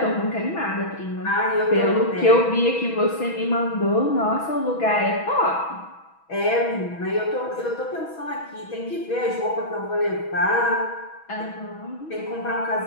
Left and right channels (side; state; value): right; late; 6.2 ms